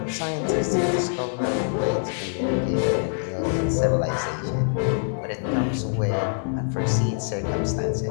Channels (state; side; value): silent; right; 61 dB below the other